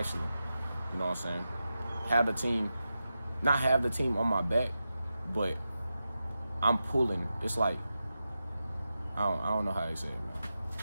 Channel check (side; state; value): both; inverted; correlation -0.91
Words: You know what I'm saying? have the team, not have the team on my back, but I'm pulling. It's like, I don't know how they say it, man.